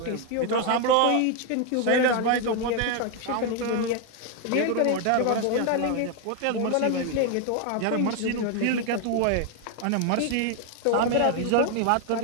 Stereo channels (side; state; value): both; different; correlation 0.01